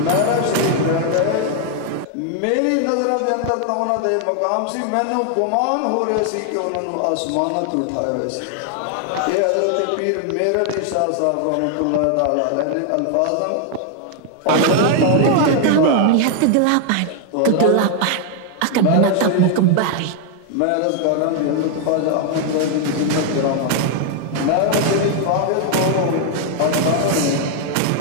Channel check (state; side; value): different; both; correlation 0.00